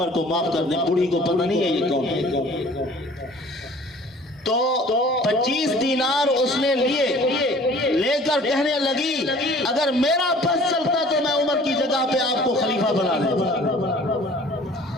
کو معاف کر دیں، بوڑھی کو پتہ نہیں ہے یہ کون ہے، تو 25 دینار اس نے لے کر کہنے لگی اگر میرا بس چلتا تو میں عمر کی جگہ پہ آپ کو خلیفہ بنا دیتا۔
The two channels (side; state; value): both; normal; correlation 0.50